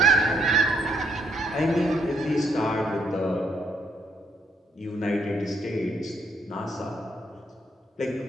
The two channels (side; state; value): both; normal; correlation 0.71